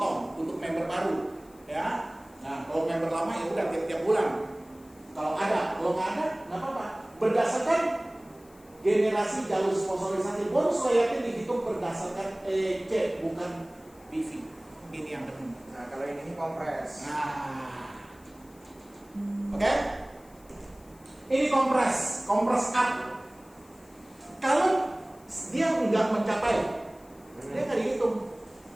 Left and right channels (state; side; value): noise; left; hiss, 27 dB below the sound